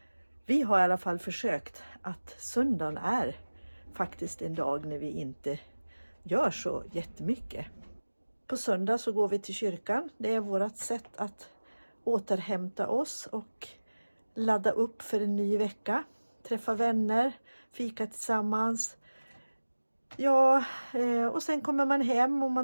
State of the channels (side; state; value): both; inverted; correlation -1.00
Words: vi har i alla fall försökt att söndagen är faktiskt en dag när vi inte gör så jättemycket. På söndag så går vi till kyrkan. Det är vårt sätt att återhämta oss och ladda upp för en ny vecka. Träffa vänner, fika tillsammans. Ja, och sen kommer man hem och